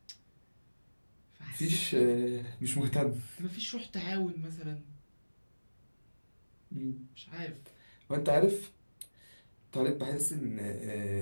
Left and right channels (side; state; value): both; inverted; correlation -1.00